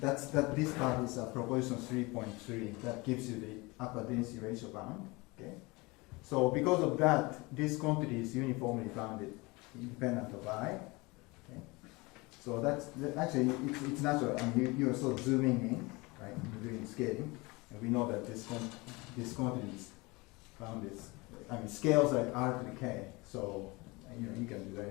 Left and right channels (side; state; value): right; quieter; 24.5 dB